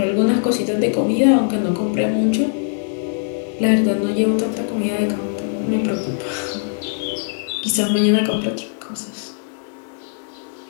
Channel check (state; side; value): silent; right; 60 dB below the other